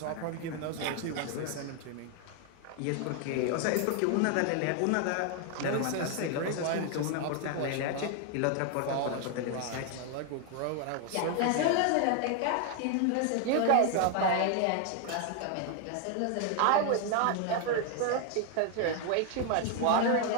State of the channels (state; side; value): different; both; correlation 0.00